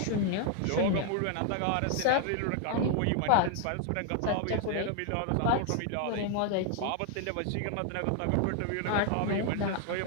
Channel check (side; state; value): both; different; correlation 0.00